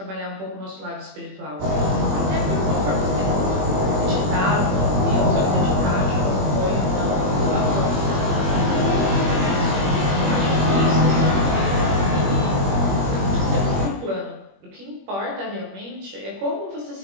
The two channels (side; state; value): left; late; 21 ms